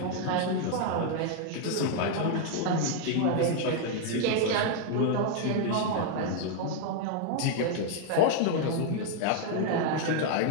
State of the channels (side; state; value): both; different; correlation 0.00